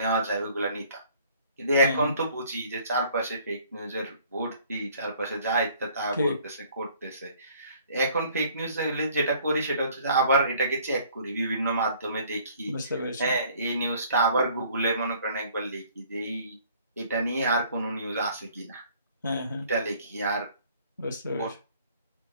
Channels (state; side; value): inverted; both; correlation -0.57